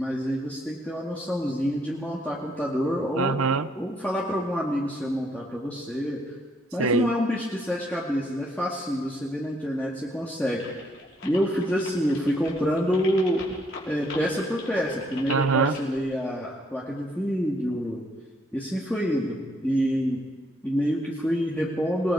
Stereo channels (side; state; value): both; normal; correlation 0.70